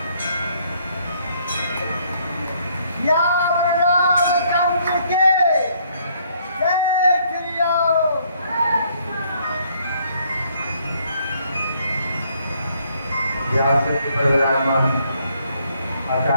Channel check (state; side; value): inverted; both; correlation -0.67